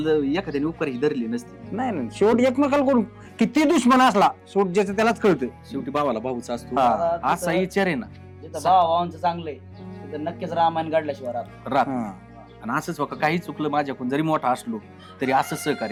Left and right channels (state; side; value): identical; both; correlation 1.00